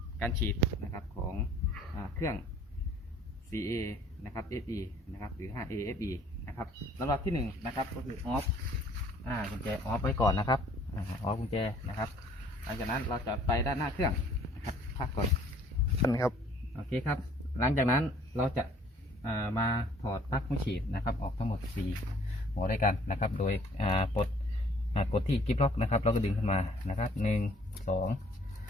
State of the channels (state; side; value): normal; both; correlation 0.57